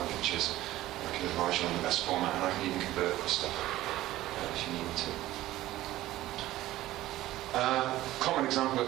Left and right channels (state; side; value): quieter; left; 15.5 dB